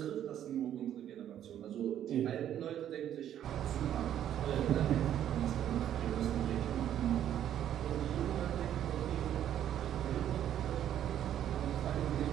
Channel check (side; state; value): left; quieter; 10.8 dB